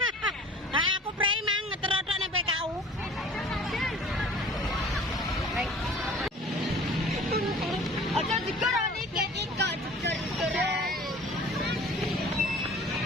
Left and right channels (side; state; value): both; normal; correlation 0.46